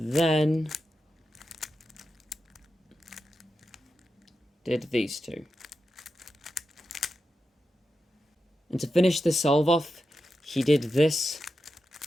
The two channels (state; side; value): normal; both; correlation 0.89